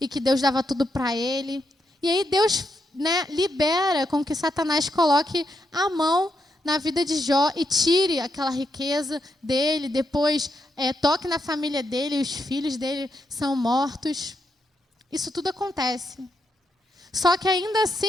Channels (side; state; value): both; normal; correlation 0.81